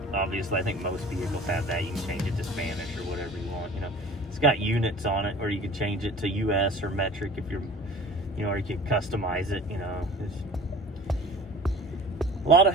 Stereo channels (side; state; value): both; normal; correlation 0.43